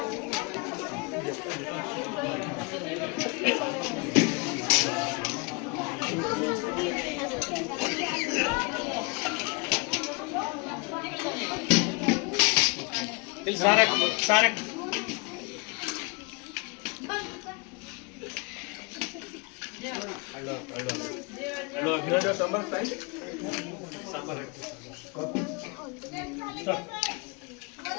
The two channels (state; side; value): quieter; right; 31.1 dB